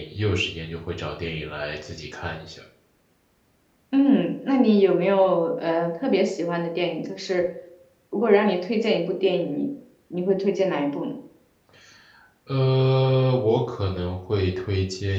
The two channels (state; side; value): identical; both; correlation 1.00